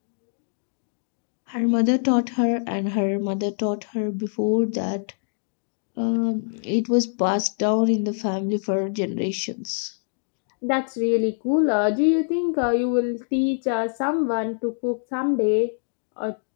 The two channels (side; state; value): right; silent; digital silence